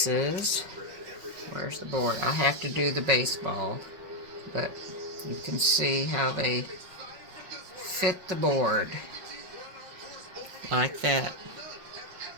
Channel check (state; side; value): late; left; 5.4 ms